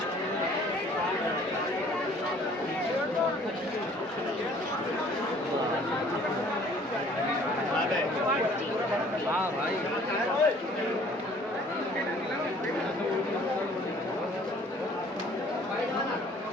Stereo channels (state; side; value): normal; both; correlation 0.55